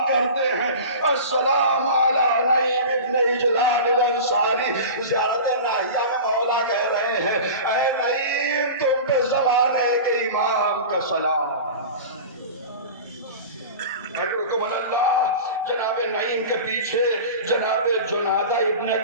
کرتے ہیں، السلام علی نعیم ابن اجلان الانصاری۔ زیارت ناحیہ میں مولا کہہ رہے ہیں، اے نعیم تم پہ زمانے کے امام کا سلام۔ اکرمکم اللہ، جناب نعیم کے پیچھے جناب جنادہ ابن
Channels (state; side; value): inverted; both; correlation -0.33